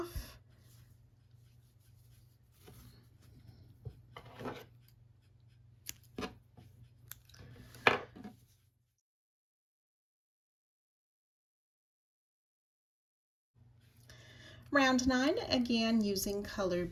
Round 9, again using color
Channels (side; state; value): both; identical; correlation 1.00